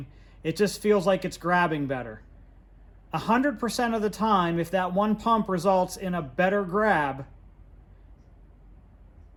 it just feels like it's grabbing better. 100% of the time, if that one pump results in a better grab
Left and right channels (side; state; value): both; identical; correlation 1.00